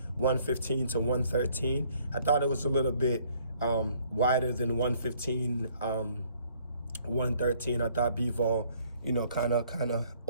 115 to 113. I thought it was a little bit wider than 115, 113. I thought Bivol, you know, kind of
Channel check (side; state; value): both; inverted; correlation -0.62